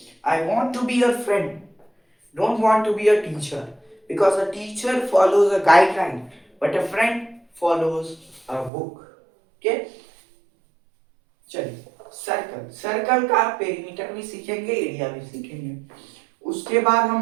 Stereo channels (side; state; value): left; drops out; at 8.7 s